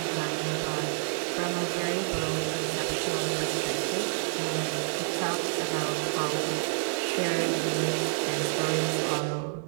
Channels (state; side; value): silent; left; digital silence